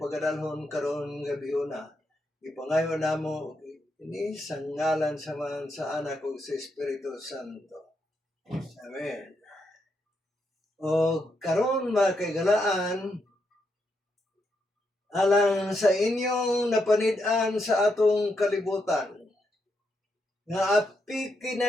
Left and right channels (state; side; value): normal; both; correlation 0.81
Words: pagadalhon karon gabi una. Ipangayo namo ini sa ngalan sa anak ug sa Espiritu Santo. Amen. O karon mga kaigalaan, alang sa inyong napanid-an sa atong kalibutan, nga api